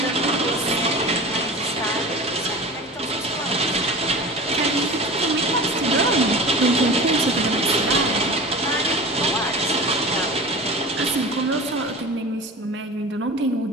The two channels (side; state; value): both; normal; correlation 0.34